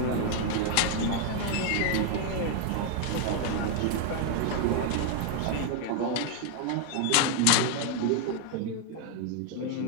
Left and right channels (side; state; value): both; different; correlation 0.01